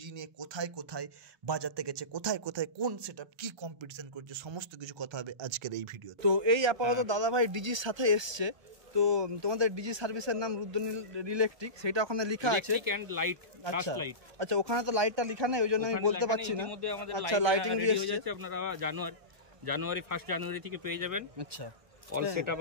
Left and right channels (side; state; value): left; late; 1.2 ms